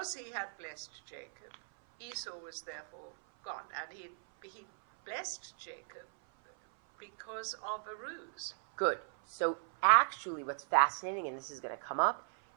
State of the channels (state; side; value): silent; left; 53 dB below the other